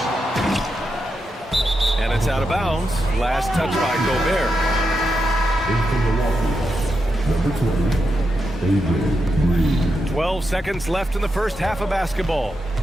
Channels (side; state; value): both; normal; correlation 0.86